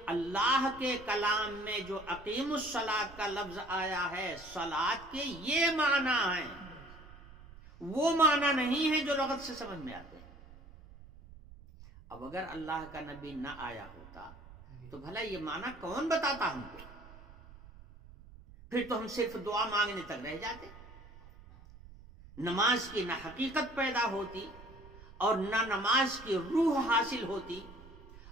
اللہ کے کلام میں جو اقیم الصلاۃ کا لفظ آیا ہے، صلاۃ کے یہ معنی ہیں، وہ معنی نہیں ہے جو لغت سے سمجھ میں آتے ہیں۔ اب اگر اللہ کا نبی نہ آیا ہوتا تو بھلا یہ معنی کون بتاتا ہم کو؟ پھر تو ہم صرف دعا مانگنے تک رہ جاتے، نماز کی نہ حقیقت پیدا ہوتی، اور نہ نماز کی روح حاصل ہوتی،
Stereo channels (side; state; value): right; noise; rumble, 19 dB below the sound